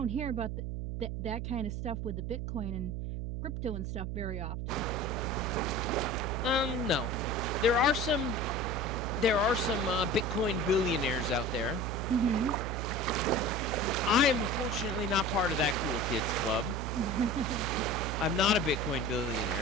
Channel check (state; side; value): noise; right; hum, 3 dB below the sound